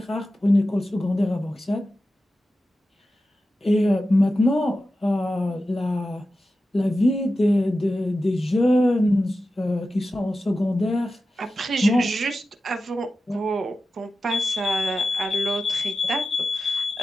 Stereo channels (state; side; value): normal; both; correlation 0.93